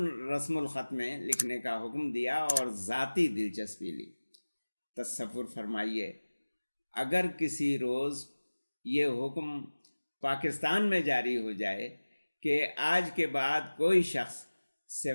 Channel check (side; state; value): both; inverted; correlation -1.00